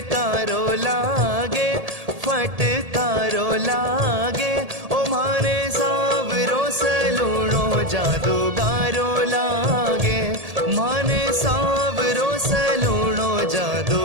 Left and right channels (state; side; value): late; left; 1.8 ms